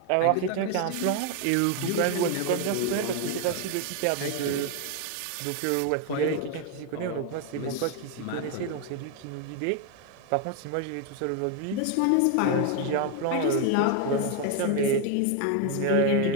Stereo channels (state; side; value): different; both; correlation 0.01